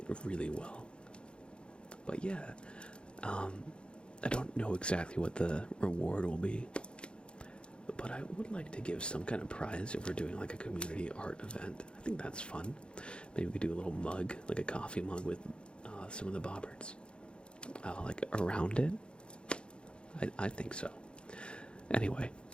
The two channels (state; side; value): late; right; 0.054 ms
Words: really well. But yeah, I don't know exactly what the reward will be, but I would like to give some kind of prize if we're doing like a community art event. I think that's fun. Maybe we could do a little mug, like a coffee mug with some of the Bobberts, like around it. I think so. Anyway,